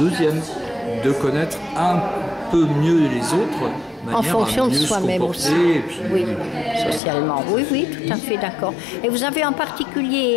de connaître un peu mieux les autres, En fonction de soi-même aussi. Et puis, Oui, socialement. Oui, tout à fait d'accord. Et vous avez en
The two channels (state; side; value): drops out; right; at 7.0 s